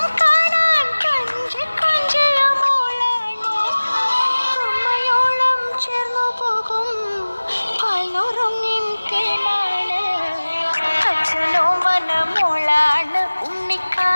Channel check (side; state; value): both; inverted; correlation -1.00